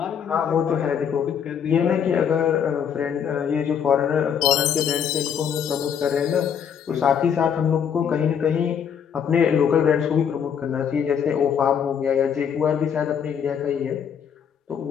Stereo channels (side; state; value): right; quieter; 7.8 dB